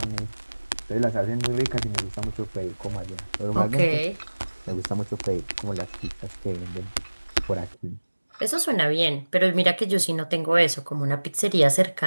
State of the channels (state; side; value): inverted; both; correlation -1.00